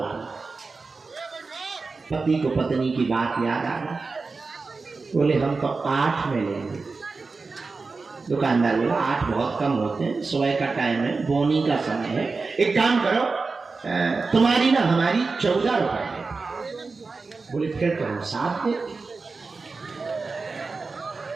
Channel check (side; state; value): left; quieter; 4.2 dB